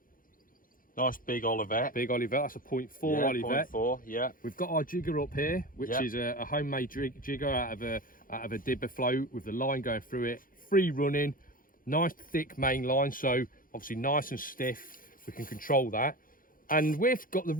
Nice big Olivet. Big Olivet, that's a 0.4 Olivet. 0.4, yeah. We've got our jigger up here, which is a homemade jigger out of a dibber float with the line going through it. Free running, nice thick main line, so obviously nice and stiff. We can control that. And we've got the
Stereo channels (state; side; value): late; right; 0.40 ms